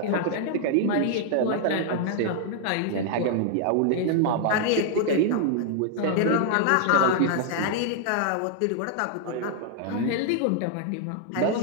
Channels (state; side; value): different; both; correlation 0.00